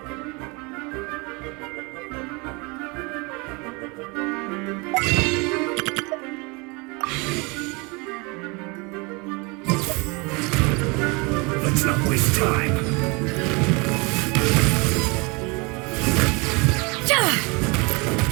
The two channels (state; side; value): quieter; left; 28.3 dB